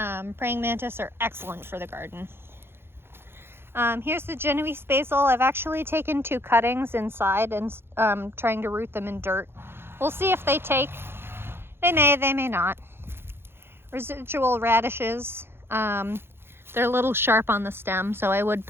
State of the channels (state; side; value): late; left; 0.11 ms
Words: Praying mantis are excellent for the garden. Here's the Genoese basil. I've actually taken 2 cuttings inside and trying to root them in dirt. We'll see if they take. They may not. Residual radishes. They're a little sharp on the stem, so I would